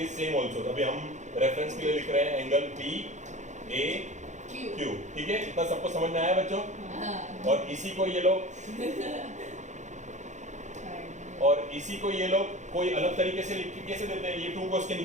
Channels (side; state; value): left; late; 0.35 ms